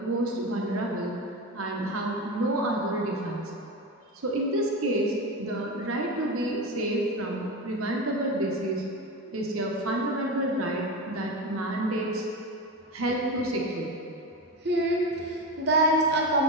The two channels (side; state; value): both; normal; correlation 0.22